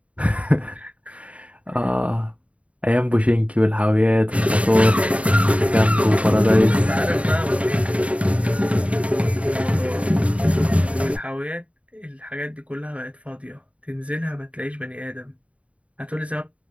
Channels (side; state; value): left; late; 0.065 ms